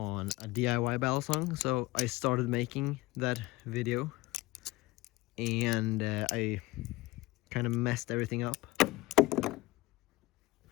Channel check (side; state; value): right; quieter; 19.8 dB